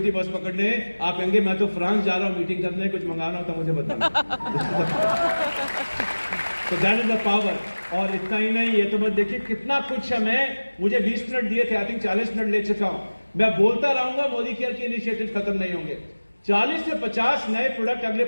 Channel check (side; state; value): both; inverted; correlation -1.00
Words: बस पकड़ने, आप कहेंगे मैं तो फ्रांस जा रहा हूं मीटिंग करने, कुछ मंगाना हो तो मुझे बताना। तो दैट इज द पावर। और इतना ही नहीं, ये तो बस देखिए कितना कुछ है। मुझे 20 मिनट दिए थे, आई थिंक 40 मिनट ले चुका हूं। मैं बोलता रहूंगा, मोदी केयर के इनिशिएटिव खत्म नहीं होंगे। 40 से 50 नए प्रोडक्ट अगले